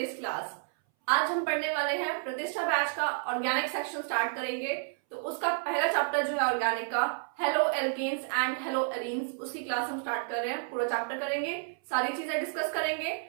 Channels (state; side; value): silent; left; 57 dB below the other